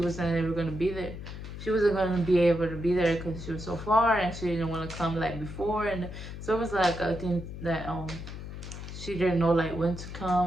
wasn't ever gonna be there. She wasn't gonna be able to be there because she was so far and she didn't want to come like before, and so it was like a thing that she didn't know like when to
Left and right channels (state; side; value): noise; left; hum, 10 dB below the sound